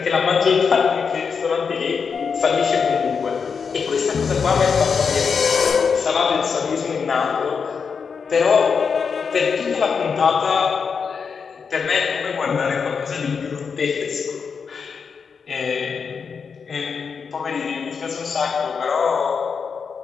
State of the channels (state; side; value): quieter; right; 5.9 dB